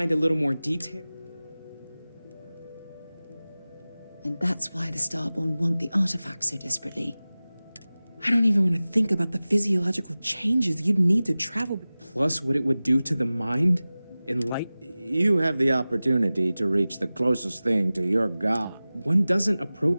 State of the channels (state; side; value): inverted; both; correlation -0.97